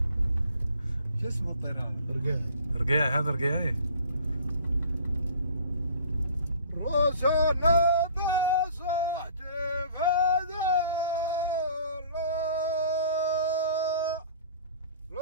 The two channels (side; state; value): both; inverted; correlation -0.50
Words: شو اسمه الطير هذا؟ رقيع. رقيع. هذا رقيعي. راسنا بصحتي هذا